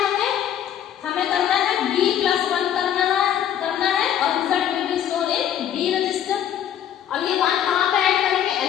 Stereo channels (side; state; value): right; quieter; 10.0 dB